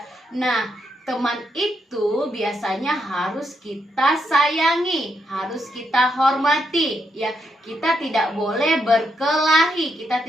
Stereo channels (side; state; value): both; normal; correlation 0.79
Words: Nah, teman itu biasanya harus kita sayangi, harus kita hormati, ya. Kita tidak boleh berkelahi, kita